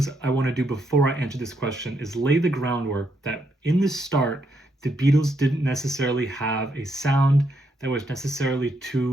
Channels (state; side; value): normal; both; correlation 0.78